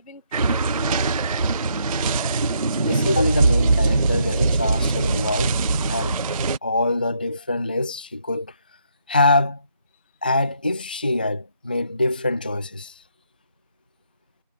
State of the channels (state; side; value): inverted; both; correlation -0.73